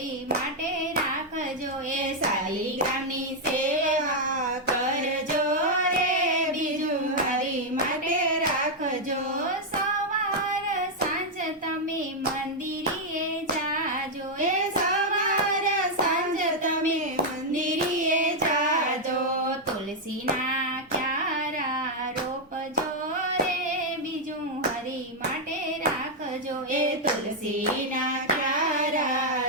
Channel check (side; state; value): both; normal; correlation -0.01